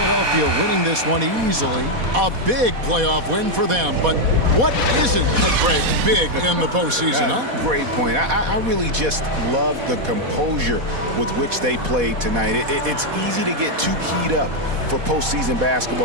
winning this one easily. A big playoff win for them. But what isn't big in the postseason, huh? Great point. I really just love the composure with which they played tonight. It's easy to get too keyed up for postseason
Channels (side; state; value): left; late; 4.1 ms